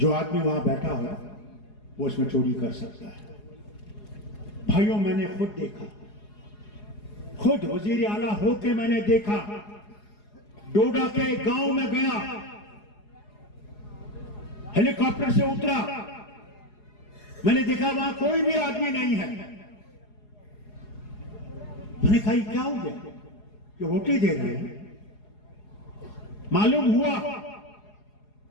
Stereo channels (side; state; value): right; late; 4.8 ms